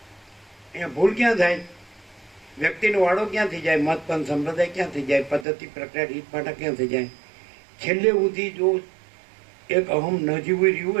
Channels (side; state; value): left; drops out; at 5.5 s